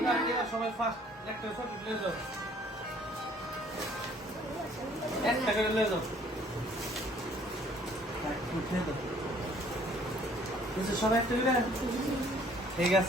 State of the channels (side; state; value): both; normal; correlation 0.59